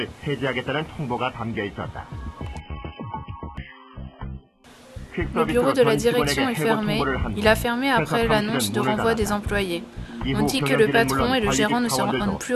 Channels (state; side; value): identical; both; correlation 1.00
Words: Le bureau de la direction est fermé. Il a fermé après l'annonce de renvoi des employés. On dit que le patron et le gérant ne se rendent plus